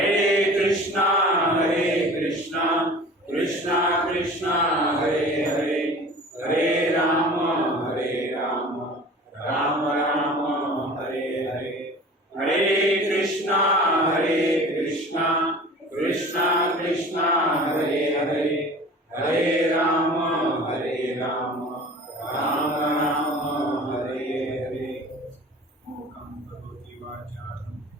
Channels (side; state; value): both; normal; correlation 0.42